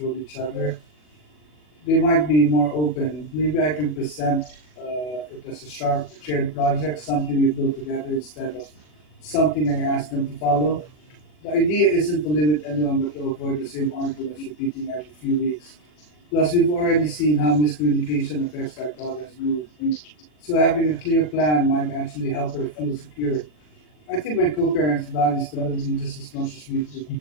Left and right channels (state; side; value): late; right; 40 ms